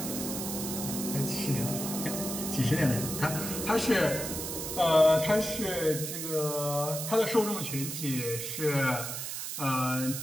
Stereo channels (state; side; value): noise; right; hiss, 5 dB below the sound